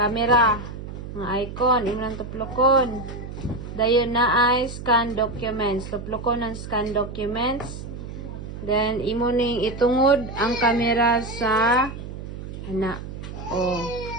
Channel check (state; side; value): noise; right; hum, 10 dB below the sound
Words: Ang icon, imo nang tuplokon. Dayon na ay scan documents. Tuplokon ang scan documents. Then, imo ning itungod ang camera sa ana. Oh.